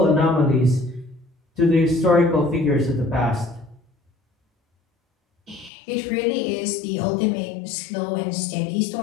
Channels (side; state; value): right; drops out; at 5.7 s